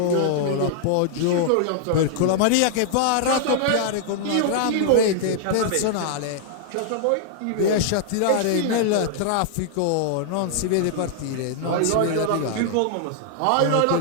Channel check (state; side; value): different; both; correlation -0.01